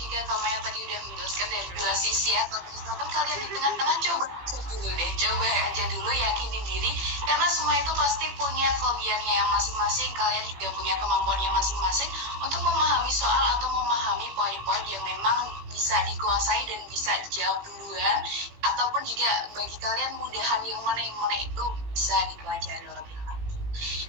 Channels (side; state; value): left; late; 18 ms